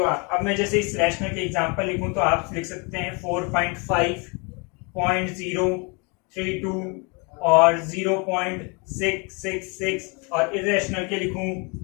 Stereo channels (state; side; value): quieter; right; 31.9 dB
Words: अब मैं जैसे इस रैशनल के एग्जांपल लिखूं तो आप लिख सकते हैं 4.5.032 और 0.666, और इररेशनल के लिखूं